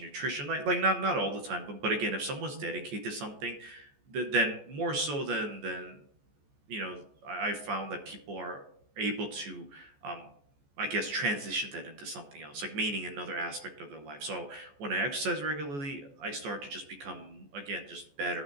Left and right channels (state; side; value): late; left; 14 ms